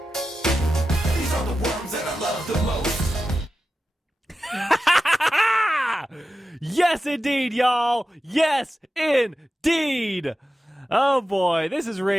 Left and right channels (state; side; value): normal; both; correlation 0.92